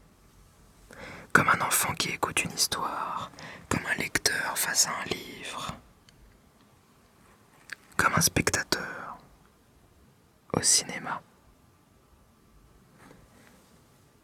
Comme un enfant qui écoute une histoire, comme un lecteur face à un livre, comme un spectateur au cinéma.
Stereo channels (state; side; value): identical; both; correlation 1.00